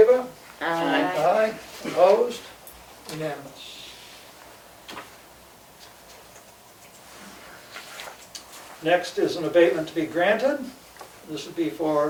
Aye. Aye. Opposed? Unanimous. Next is an abatement to be granted. This would be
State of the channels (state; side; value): identical; both; correlation 1.00